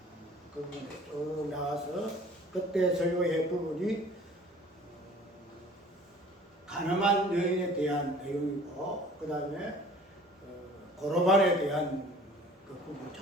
그 부분에 쭉 나와서 그때 설교의 부분이 가늠한 여인에 대한 내용이고 그 다음에 고로반에 대한 그 부분을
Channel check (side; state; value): both; normal; correlation 0.48